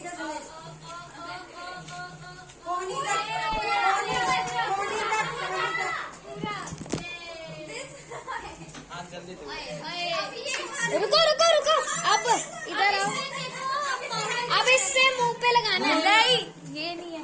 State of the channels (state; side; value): identical; both; correlation 1.00